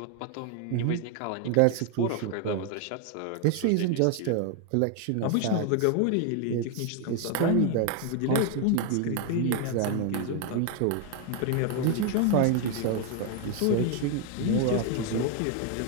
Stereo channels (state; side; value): different; both; correlation 0.01